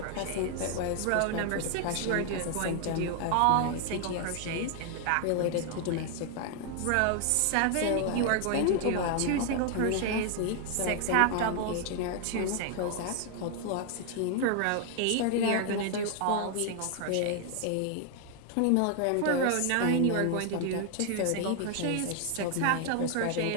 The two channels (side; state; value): both; different; correlation 0.00